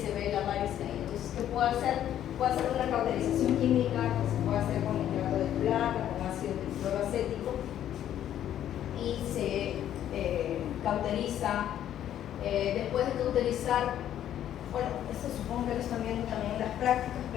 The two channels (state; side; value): quieter; right; 11.0 dB